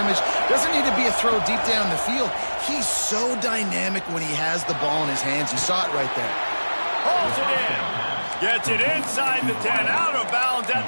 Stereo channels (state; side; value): inverted; both; correlation -1.00